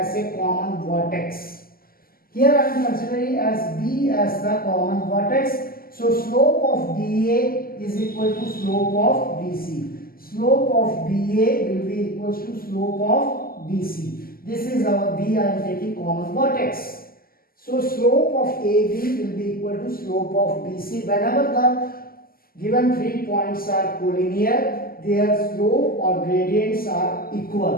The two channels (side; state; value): right; late; 0.42 ms